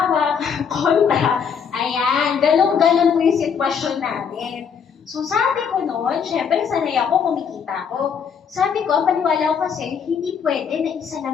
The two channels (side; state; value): right; quieter; 6.9 dB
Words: kontra, ayan, galong-galong po yung sitwasyon natin. So sabi ko noon, syempre sanay ako, kumikita ko. Sabi ko, ang paniwala ko kasi, hindi pwede na isa